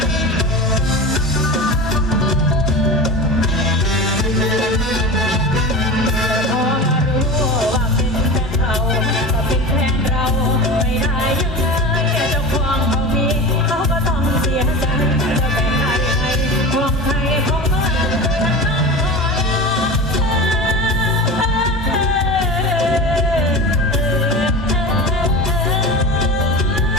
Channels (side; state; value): both; normal; correlation 0.29